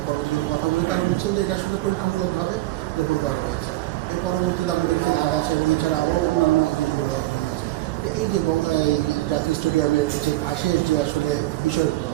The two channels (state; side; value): quieter; left; 17.7 dB